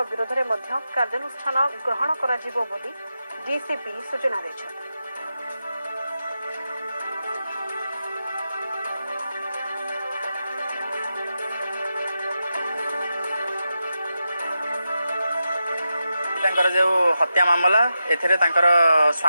विरोध में कार्यानुष्ठान ग्रहण कर डीसीपी सूचना देते। जो हत्या मामला एथिरे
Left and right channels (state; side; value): inverted; both; correlation -0.89